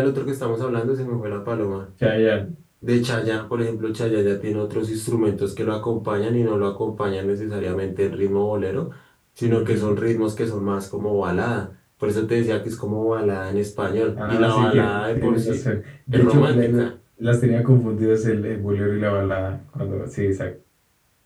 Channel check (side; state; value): both; identical; correlation 1.00